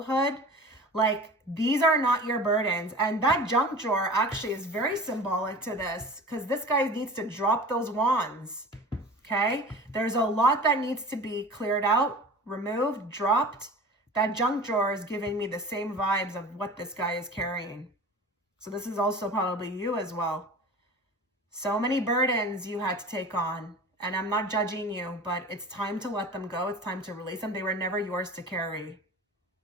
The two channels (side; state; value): both; normal; correlation 0.37